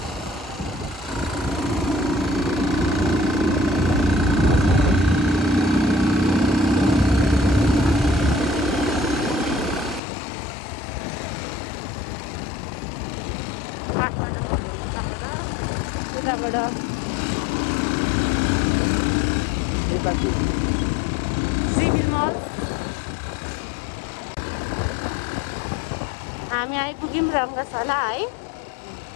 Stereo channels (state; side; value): drops out; right; at 10.0 s